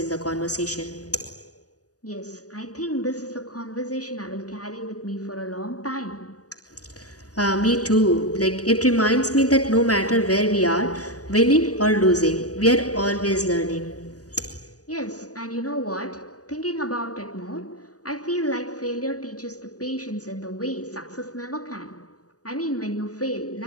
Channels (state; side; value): late; right; 0.67 ms